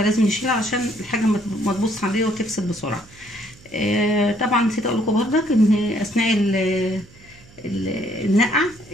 نشيلها عشان الحاجه ما تبص عليها وتفسد بسرعه. طبعا نسيت اقول لكم برضك ان اثناء النقع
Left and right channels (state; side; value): noise; right; hum, 24 dB below the sound